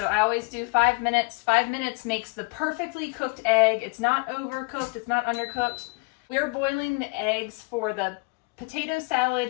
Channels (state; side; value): quieter; right; 29.0 dB